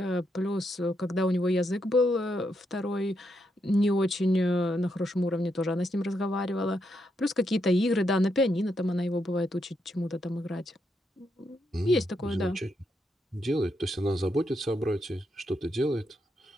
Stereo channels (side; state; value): both; normal; correlation 0.80